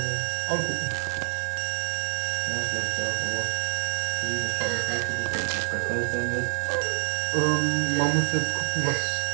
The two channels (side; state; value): left; silent; 60 dB below the other